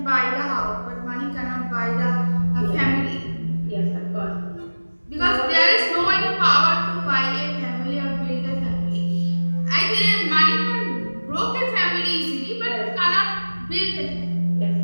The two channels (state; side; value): inverted; both; correlation -1.00